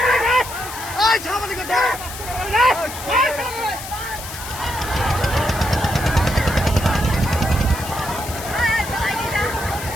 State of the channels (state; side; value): noise; left; hiss, 11 dB below the sound